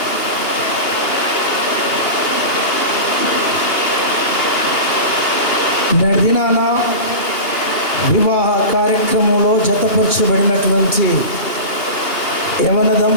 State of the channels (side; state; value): right; late; 2.8 ms